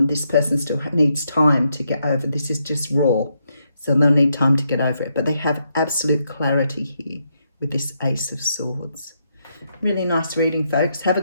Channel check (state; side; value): inverted; both; correlation -0.79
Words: This person still needs time to get over. This is just raw. So they'll need time to get over it. But they have absolute clarity here with this Ace of Swords. Really nice reading, folks. Have a